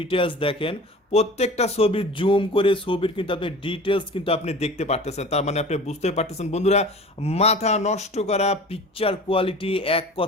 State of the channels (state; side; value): normal; both; correlation 0.40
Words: দেখেন, প্রত্যেকটা ছবি জুম করে ছবির কিন্তু আপনি ডিটেলস কিন্তু আপনি দেখতে পারতেছেন। তার মানে আপনি বুঝতে পারতেছেন বন্ধুরা, মাথা নষ্ট করা পিকচার কোয়ালিটি, এক